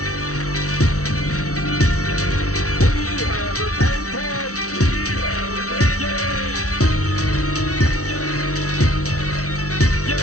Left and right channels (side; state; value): right; late; 0.65 ms